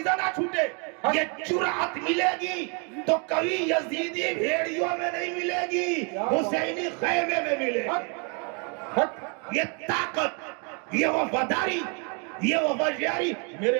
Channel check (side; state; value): left; quieter; 36.6 dB